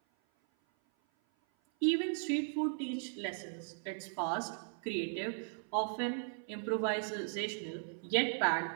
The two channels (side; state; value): left; silent; 53 dB below the other